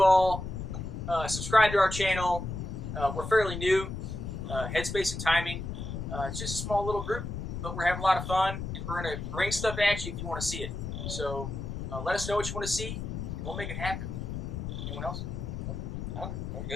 all. Subscribe to our channel. We're fairly new. Headspace and Timing. It's just a small little group, but we're having a lot of fun, and we're going to bring stuff at you if you want to see it. So let us know what you want to see, and we'll make it happen. Anyone else? Oh, we're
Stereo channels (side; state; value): left; noise; rumble, 5 dB below the sound